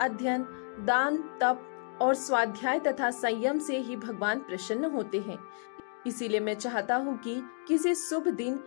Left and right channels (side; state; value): right; silent; 57 dB below the other